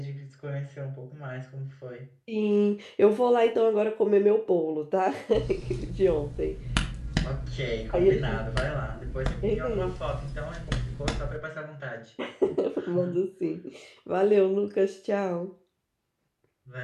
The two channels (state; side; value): identical; both; correlation 1.00